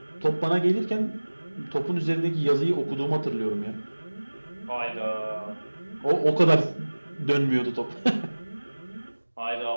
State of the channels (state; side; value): inverted; both; correlation -1.00